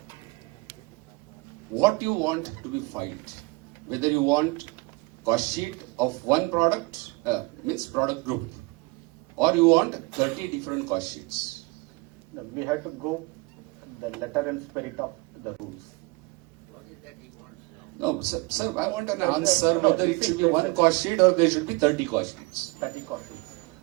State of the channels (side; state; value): left; quieter; 26.1 dB